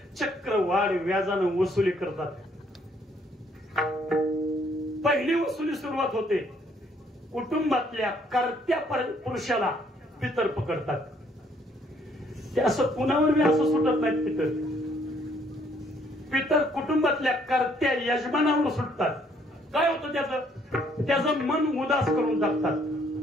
चक्रवाढ व्याजानं वसुली करतात. पहिली वसुली सुरुवात होते, कुटुंबातल्या कर्त्या पुरुषाला पितर पकडतात. ते असं कुणावर बी असं सुटत नाहीत. पितर कुटुंबातल्या कर्त्या यजमानावर सुटतात. काय होतं त्याचं मन उदास करून टाकतात,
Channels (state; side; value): normal; both; correlation 0.66